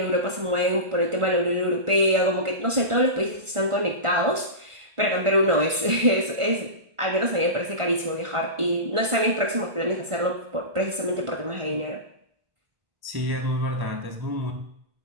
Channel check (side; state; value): left; late; 1.5 ms